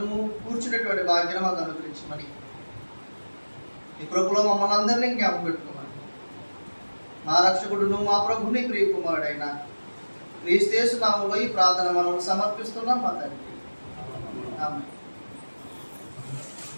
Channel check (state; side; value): inverted; both; correlation -1.00